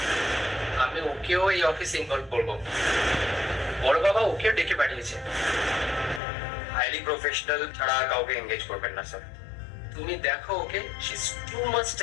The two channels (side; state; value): right; drops out; at 6.2 s